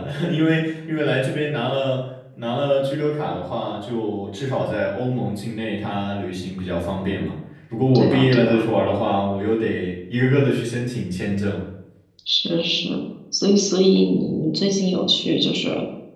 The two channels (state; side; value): identical; both; correlation 1.00